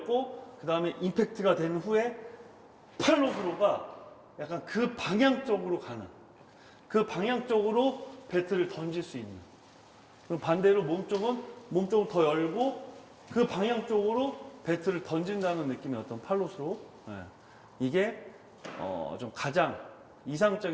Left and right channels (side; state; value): both; identical; correlation 1.00